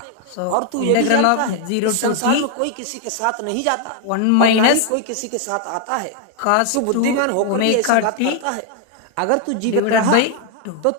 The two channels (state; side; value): different; both; correlation 0.00